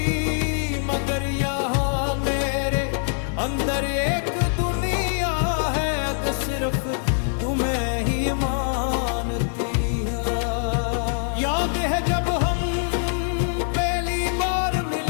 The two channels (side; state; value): right; silent; 63 dB below the other